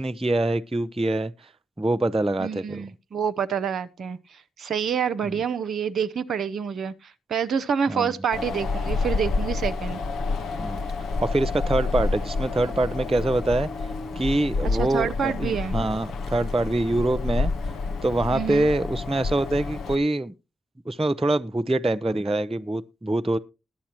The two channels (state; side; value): normal; both; correlation 0.84